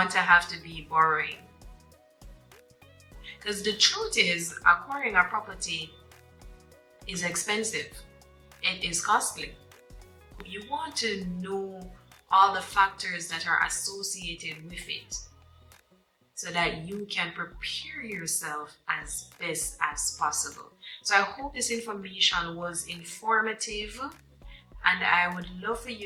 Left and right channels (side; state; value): both; identical; correlation 1.00